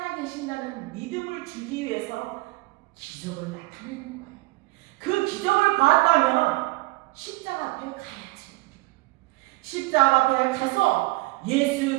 믿음을 주기 위해서 기적을 나타내는 거예요. 그 기적을 봤다면 십자가 앞에 가야지. 십자가 앞에 가서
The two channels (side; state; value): left; quieter; 22.7 dB